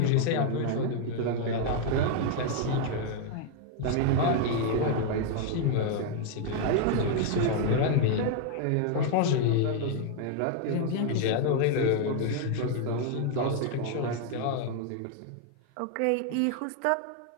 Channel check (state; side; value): different; both; correlation 0.00